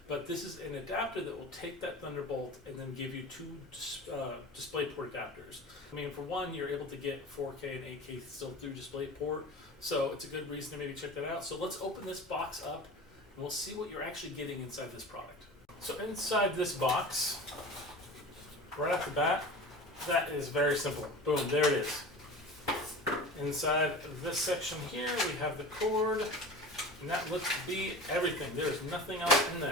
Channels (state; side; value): normal; both; correlation 0.35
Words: but this is an adapter that will take that Thunderbolt and then give you two Displayport adapters. I mean, for one, you're able to get 4K and 8K still through Displayport, so it's a good reason to maybe check that out. So let's open this box up and we'll see what you're actually getting inside this product. So inside this box, right off the bat, that is very simple. Boom, there it is. Inside this section here, we have the cord, and that looks to be everything. There's nothing else in